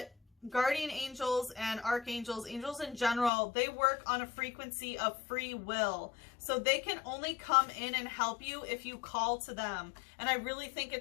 guardian angels and archangels, angels in general, they work on a frequency of free will. So they can only come in and help you if you call to them. And I really think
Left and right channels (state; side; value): drops out; right; at 3.3 s